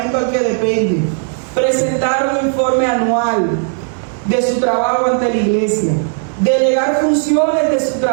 al que depende. Presentar un informe anual de su trabajo ante la iglesia. Delegar funciones de su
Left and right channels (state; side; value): silent; left; 69 dB below the other